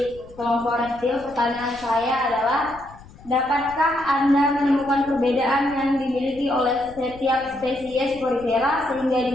kelompok reptil. Pertanyaan saya adalah, dapatkah Anda menemukan perbedaan yang dimiliki oleh setiap spesies porifera sehingga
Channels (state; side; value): noise; left; rumble, 21 dB below the sound